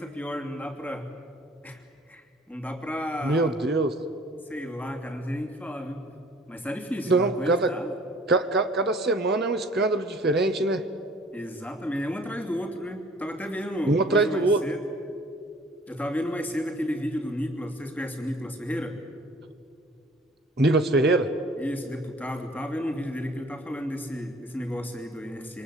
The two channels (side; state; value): both; normal; correlation 0.52